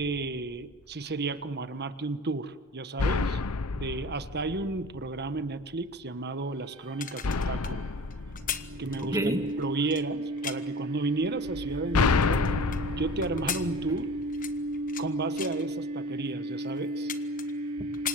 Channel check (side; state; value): both; normal; correlation 0.39